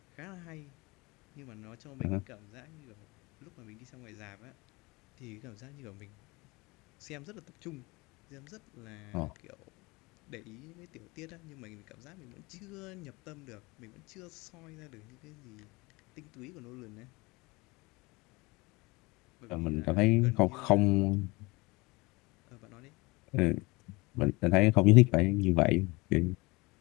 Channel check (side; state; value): right; quieter; 24.2 dB